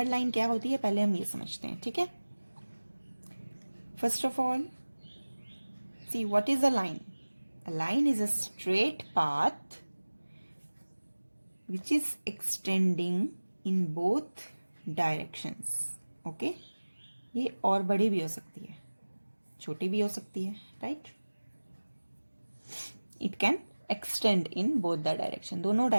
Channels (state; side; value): inverted; both; correlation -1.00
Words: line क्या होती है पहले हम ये समझते हैं. ठीक है. First of all, see what is a line. A line is a straight path which is extending in both directions. Okay. ये और बड़ी भी हो सकती है, छोटी भी हो सकती है, right? It can extend in both the direction. दोनों